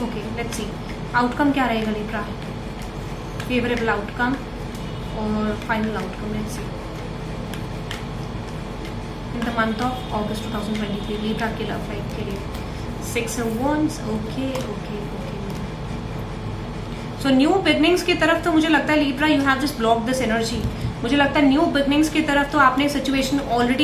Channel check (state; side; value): identical; both; correlation 1.00